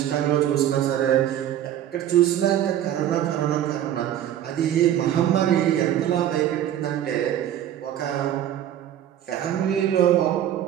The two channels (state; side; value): quieter; left; 11.2 dB